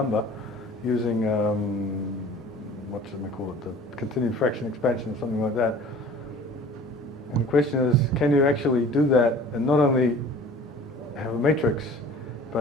using what should we call it? The continued fraction expansion or something like that. And the question is, can you actually do that and not only have a matrix,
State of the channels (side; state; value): both; normal; correlation 0.46